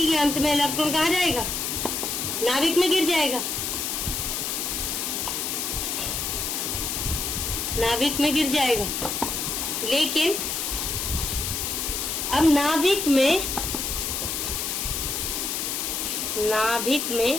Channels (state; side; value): noise; left; hiss, 2 dB below the sound